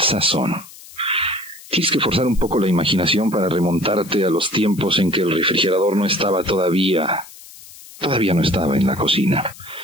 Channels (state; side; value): noise; left; hiss, 19 dB below the sound